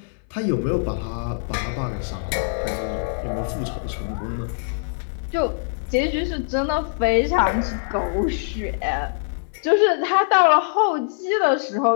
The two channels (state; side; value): silent; right; 59 dB below the other